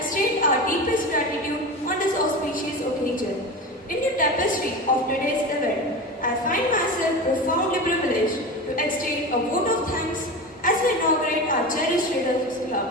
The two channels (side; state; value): both; normal; correlation 0.27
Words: our deepest gratitude on this auspicious occasion. In the tapestry of today's event, I find myself profoundly privileged to extend a vote of thanks as we inaugurate our cherished Readers